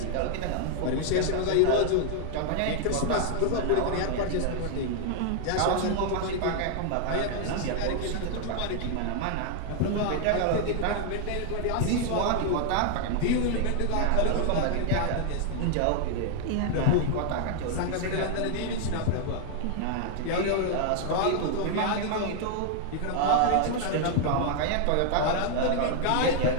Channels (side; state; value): both; different; correlation 0.00